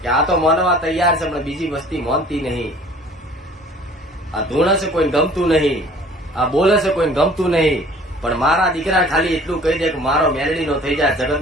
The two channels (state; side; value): normal; both; correlation 0.50